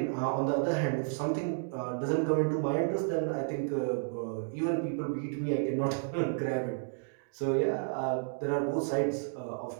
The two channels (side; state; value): left; silent; digital silence